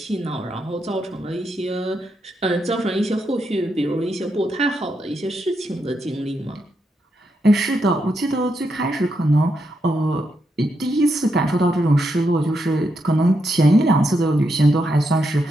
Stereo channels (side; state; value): both; normal; correlation 0.82